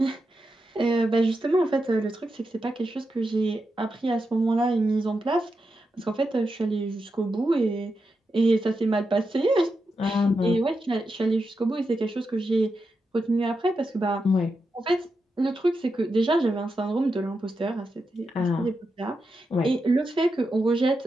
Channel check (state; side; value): normal; both; correlation 0.87